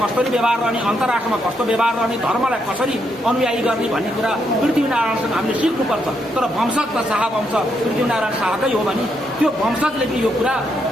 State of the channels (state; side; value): normal; both; correlation 0.78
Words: कसरी व्यवहार रहने, अन्तर्राष्ट्रमा कस्तो व्यवहार रहने, धर्मलाई कसरी अनुयायी गर्ने भन्ने कुरा पृथ्वीनारायणसँग हामीले सिक्नुपर्छ। तर वंशज त शाह वंश पृथ्वीनारायण शाहकै हो भने त्यो वंशजले पनि यो कुरा